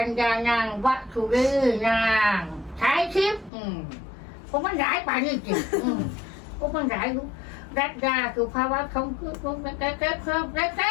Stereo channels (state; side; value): drops out; right; at 3.5 s